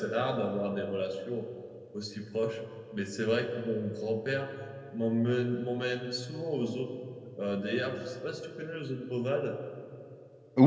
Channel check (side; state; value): both; identical; correlation 1.00